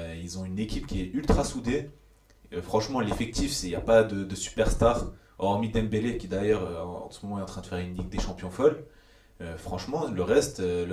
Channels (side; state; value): both; identical; correlation 1.00